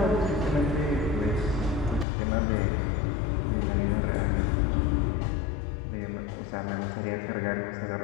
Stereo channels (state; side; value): drops out; right; at 2.1 s